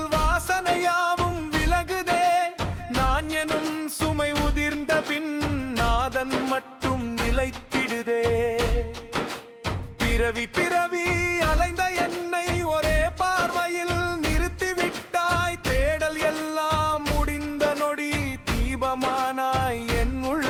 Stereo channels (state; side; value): identical; both; correlation 1.00